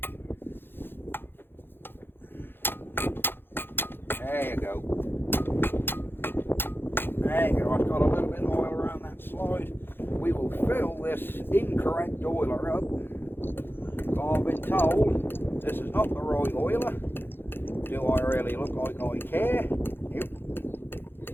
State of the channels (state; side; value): late; right; 0.10 ms